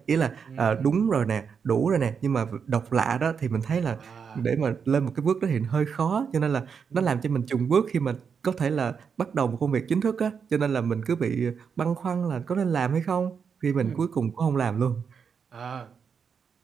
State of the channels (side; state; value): left; quieter; 6.4 dB